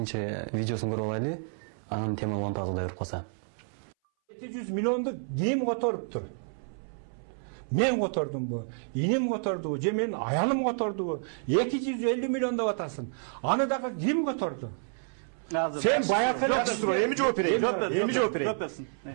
видеосун көрүп алайлы. Анын тема улантабыз, Кудай буйруп калса. 700 миллионду ким которуптур? Мен котордумбу, инем котордубу, же менин аялым котордубу? 250 миллион деп атасың. Аны дагы ким которду? Сен баягы эми жооп берейин.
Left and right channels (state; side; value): silent; left; 58 dB below the other